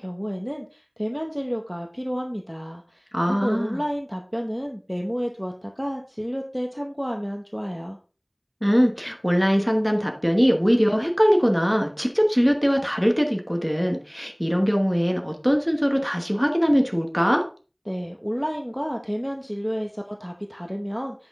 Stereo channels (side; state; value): both; identical; correlation 1.00